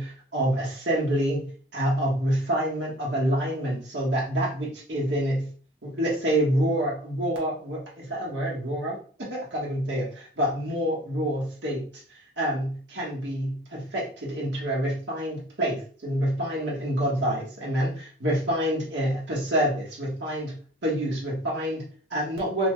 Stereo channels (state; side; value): normal; both; correlation 0.46